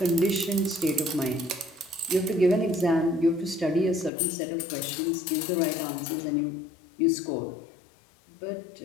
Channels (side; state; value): right; drops out; at 4.1 s